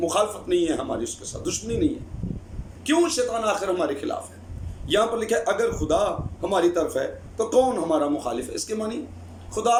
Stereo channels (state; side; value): identical; both; correlation 1.00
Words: نہیں ہے، ہماری اس کے ساتھ دشمنی نہیں ہے۔ کیوں شیطان آخر ہمارے خلاف ہے؟ یہاں پر لکھا ہے اگر خدا ہماری طرف ہے تو کون ہمارا مخالف ہے۔ اس کے معنی خدا